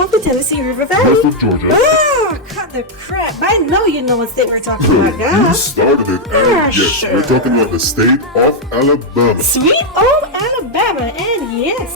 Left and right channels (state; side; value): normal; both; correlation -0.01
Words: the Tennessee River Valley. West of Georgia. Ah, cut the crap. I know you know what state we're talking about, You guys. started it, and yes, we're talking about the state of Alabama. Sweet old Alabama, and yes,